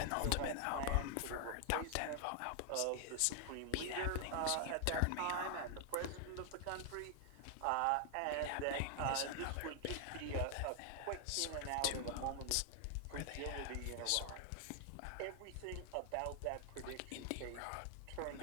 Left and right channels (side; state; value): both; different; correlation 0.00